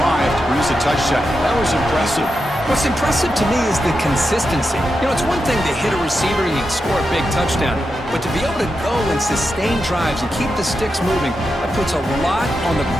to produce a touchdown. That was impressive. What's impressive to me is the consistency. You know, it's one thing to hit a receiver and you can score a big touchdown, but to be able to go and sustain drives and keep the sticks moving, that puts a lot on the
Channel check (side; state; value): both; normal; correlation 0.87